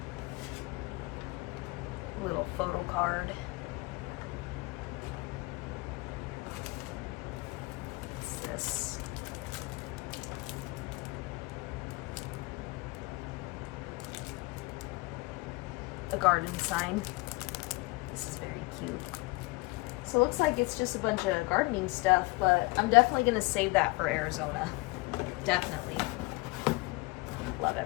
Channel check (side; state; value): right; quieter; 24.8 dB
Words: A little photo card. What's this? A garden sign. This is very cute. So it looks like it's just a bunch of gardening stuff, but I'm definitely gonna save that for Arizona. Definitely. Love